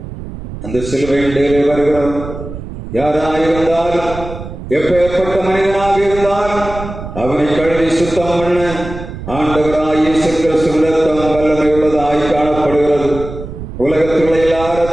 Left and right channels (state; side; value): noise; right; rumble, 10 dB below the sound